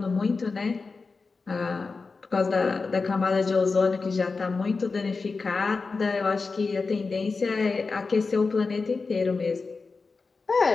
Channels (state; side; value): quieter; right; 4.3 dB